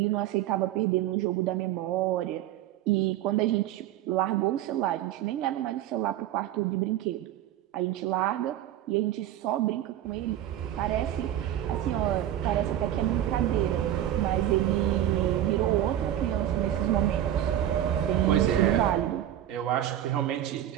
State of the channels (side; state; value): left; quieter; 12.1 dB